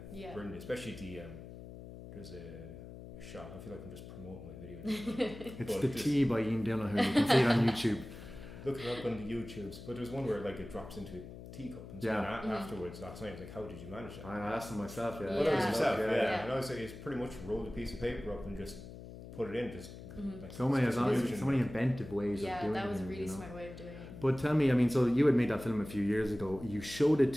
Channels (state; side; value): noise; left; hum, 13 dB below the sound